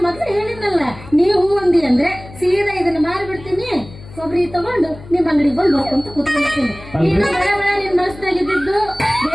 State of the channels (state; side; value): noise; left; hum, 17 dB below the sound